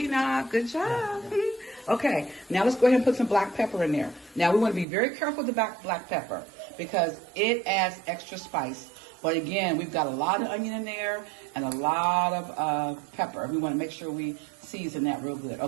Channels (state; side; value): drops out; left; at 4.9 s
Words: Good job. Okay, now let's go ahead and put some black pepper in there. Now, we want to be very careful with the black pepper because it adds extra spice. But again, we've got a lot of onion in there and a lot of pepper. We want to make sure we season that real good.